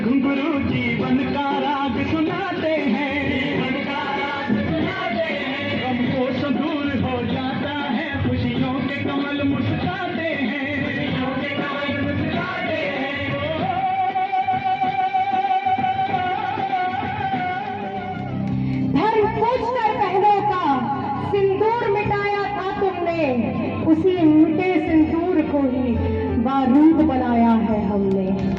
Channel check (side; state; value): both; identical; correlation 1.00